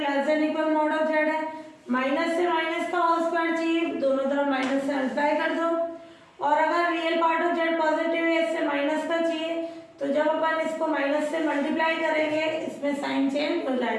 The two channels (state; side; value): identical; both; correlation 1.00